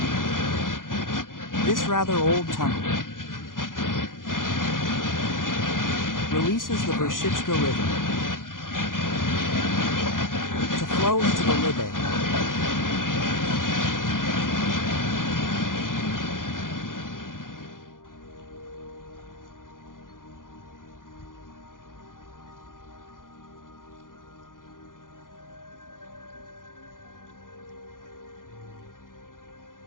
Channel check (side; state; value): right; late; 0.89 ms